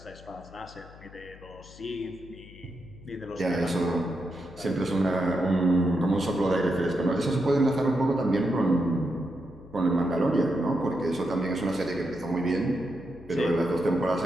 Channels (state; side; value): noise; left; hum, 20 dB below the sound